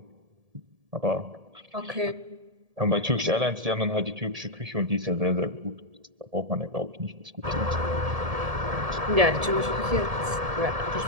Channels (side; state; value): left; late; 1.7 ms